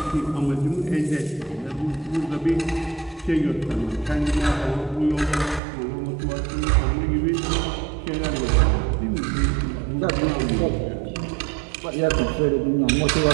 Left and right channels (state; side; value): drops out; left; at 5.6 s